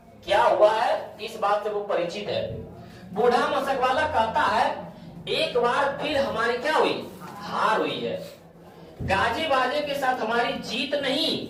क्या हुआ है? इस बात से वो परिचित है। बूढ़ा मशक वाला कहता है एक बार फिर हमारी क्या हुई? हार हुई है। गाजे बाजे के साथ हमारी जीत नहीं,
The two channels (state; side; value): identical; both; correlation 1.00